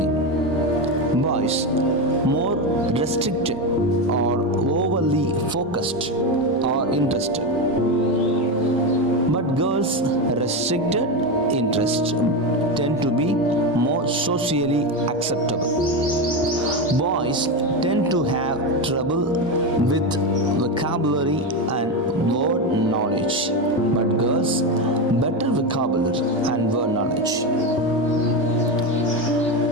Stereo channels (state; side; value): normal; both; correlation 0.14